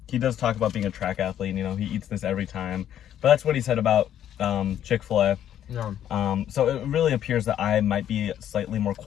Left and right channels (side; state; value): right; quieter; 10.6 dB